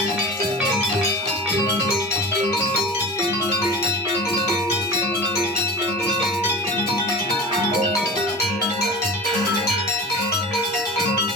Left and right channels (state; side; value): normal; both; correlation 0.34